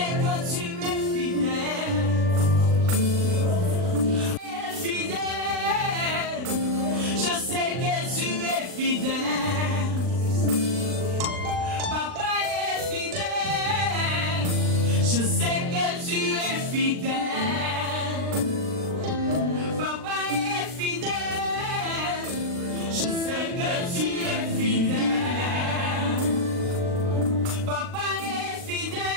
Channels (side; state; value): left; late; 39 ms